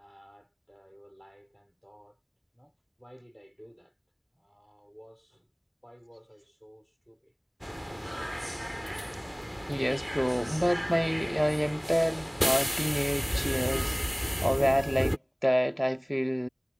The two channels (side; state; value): both; identical; correlation 1.00